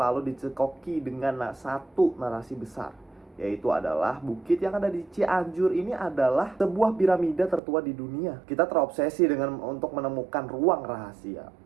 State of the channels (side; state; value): left; drops out; at 7.6 s